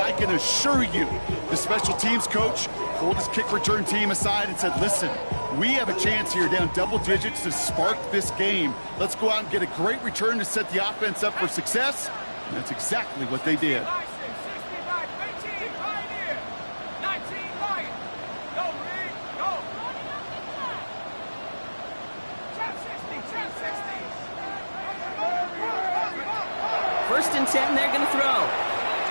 can assure you the special teams coach pulled his kick return team aside and said, listen, we have a chance here down double digits to spark this game. Let's go out and get a great return to set the offense up for success. And that's exactly what they did. First and 10, they're going to throw.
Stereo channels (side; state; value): both; inverted; correlation -1.00